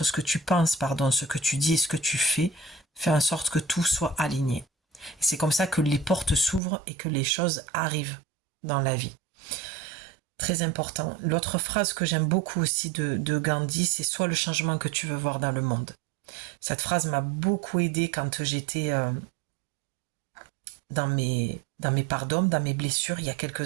ce que tu penses, pardon, ce que tu dis et ce que tu fais en sorte que tout soit aligné. Et c'est comme ça que les portes s'ouvrent et que les choses arrivent dans la vie. Très important. L'autre phrase que j'aime beaucoup aussi de Gandhi, c'est sois le changement que tu veux voir dans le monde. Cette phrase m'a beaucoup aidée quand j'étais dans mes parts d'hommes, dans mes blessures il y a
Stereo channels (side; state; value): left; drops out; at 6.6 s